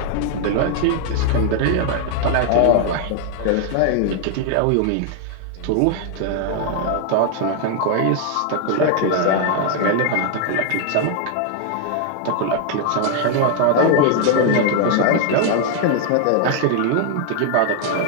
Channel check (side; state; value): both; different; correlation 0.00